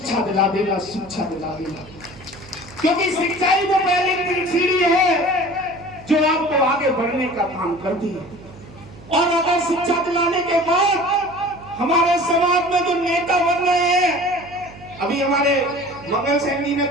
दिला देना, शिक्षा दिला देना, क्योंकि शिक्षा ही वो पहली सीढ़ी है जो आपको आगे बढ़ने का काम करती है। और अगर शिक्षा दिलाने के बाद हमारे समाज में जो नेता बन रहे हैं, अभी हमारे मंगल सैनी ने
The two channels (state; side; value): noise; right; hum, 21 dB below the sound